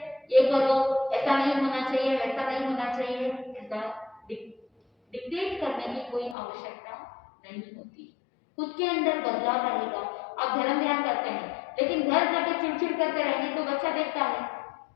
ये करो, ऐसा नहीं होना चाहिए, वैसा नहीं होना चाहिए, ऐसा डिक्टेट करने की कोई आवश्यकता नहीं होती। खुद के अंदर बदलाव रहेगा। आप धर्म ध्यान करते हैं, लेकिन घर जाके चिड़चिड़ करते रहेंगे तो बच्चा देखता है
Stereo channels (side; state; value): right; drops out; at 6.4 s